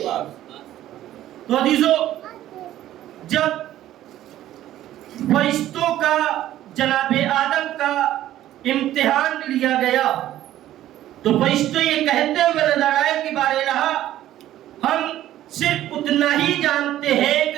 تو عزیزو، جب فرشتوں کا جناب آدم کا امتحان لیا گیا تو فرشتے یہ کہتے ہوئے نظر آئے کہ بار الہ ہم صرف اتنا ہی جانتے ہیں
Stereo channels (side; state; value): left; quieter; 13.2 dB